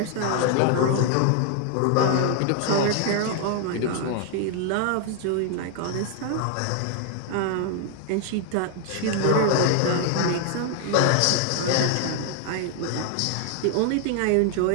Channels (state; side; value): different; both; correlation 0.00